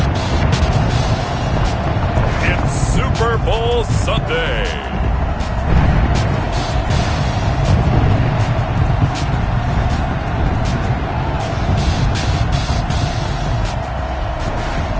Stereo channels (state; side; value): identical; both; correlation 1.00